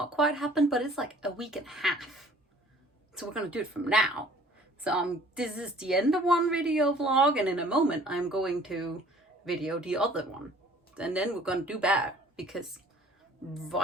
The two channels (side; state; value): both; normal; correlation 0.53